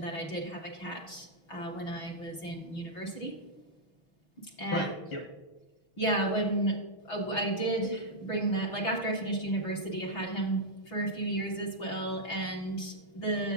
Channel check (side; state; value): right; late; 6.1 ms